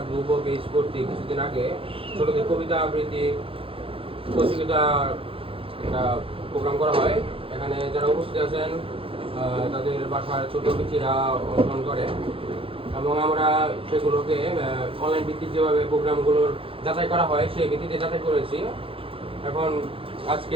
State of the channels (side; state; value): left; late; 0.27 ms